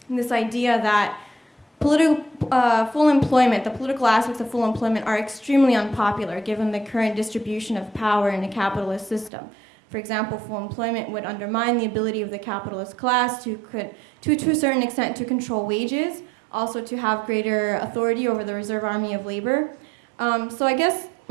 this idea that full employment, the political aspects of full employment are extremely unpopular given the current distribution of power in a capitalist system. For example, full employment would undermine the ability of the capitalist class to a certain extent to control wages, also to have greater authority over the reserve army of labor. So I guess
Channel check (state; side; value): drops out; left; at 9.3 s